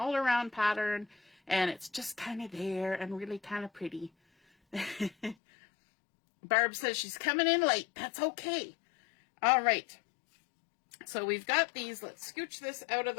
pattern. And it's just kind of there and really kind of pretty. Barb says she's coming in late. That's okay. All right. So we've got these. Let's scooch this out of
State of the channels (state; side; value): drops out; right; at 5.4 s